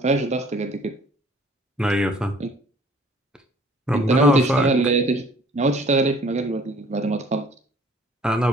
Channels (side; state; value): both; normal; correlation 0.54